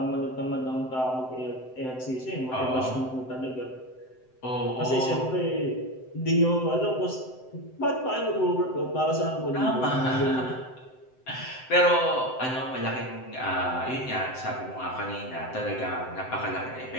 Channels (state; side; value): late; right; 7.8 ms